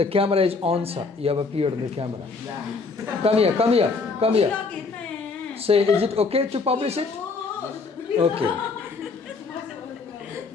camera is on, sir. You have appeared on the camera. Come here, come here, come here. Say, is it okay to publish it? Okay.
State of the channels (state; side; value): quieter; right; 4.3 dB